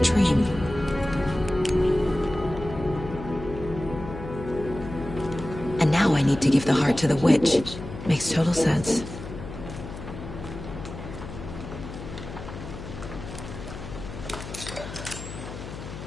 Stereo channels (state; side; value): noise; left; hum, 10 dB below the sound